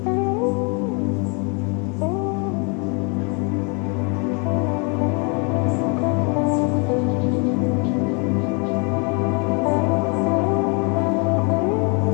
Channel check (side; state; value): right; quieter; 34.2 dB